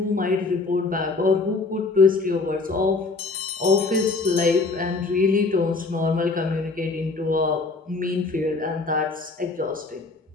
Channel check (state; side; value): quieter; right; 3.8 dB